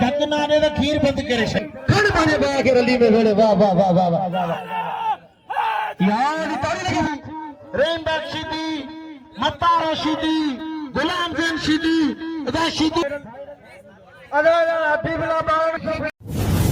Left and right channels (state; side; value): identical; both; correlation 1.00